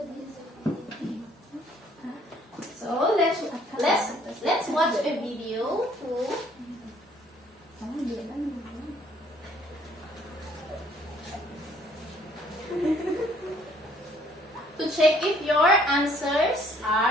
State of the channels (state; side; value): normal; both; correlation 0.61